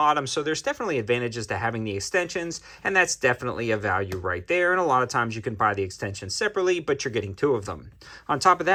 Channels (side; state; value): both; identical; correlation 1.00